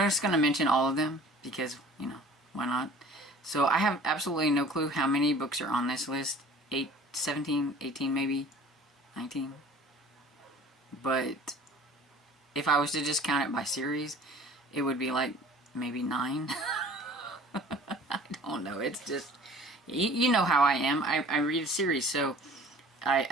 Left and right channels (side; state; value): both; normal; correlation 0.47